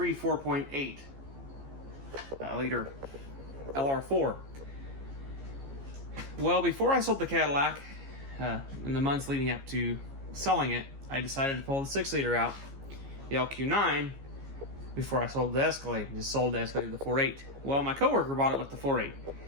4.8 liter LR4. Well, before I sold the Cadillac, in the months leading up to selling it, I decided to pull the 6 liter out, the LQ9, before I sold the Escalade. Just sold the Escalade with the 4.8. Well, my coworker bought it with the 4.8.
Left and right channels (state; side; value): late; left; 15 ms